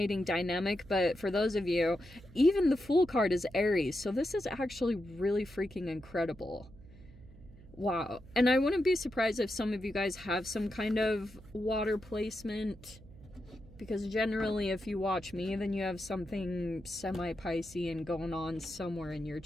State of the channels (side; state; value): right; noise; hum, 20 dB below the sound